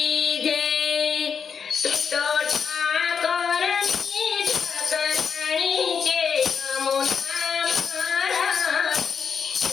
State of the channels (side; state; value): right; quieter; 6.5 dB